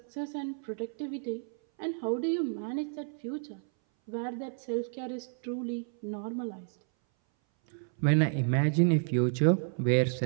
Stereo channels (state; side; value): silent; left; 57 dB below the other